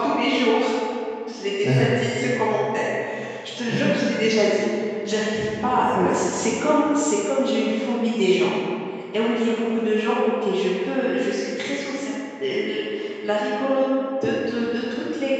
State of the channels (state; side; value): identical; both; correlation 1.00